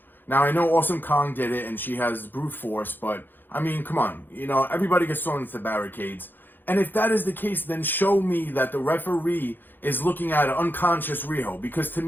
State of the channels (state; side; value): late; right; 0.093 ms